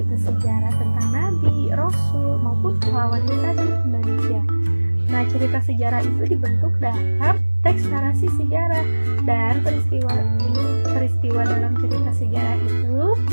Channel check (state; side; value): inverted; both; correlation -1.00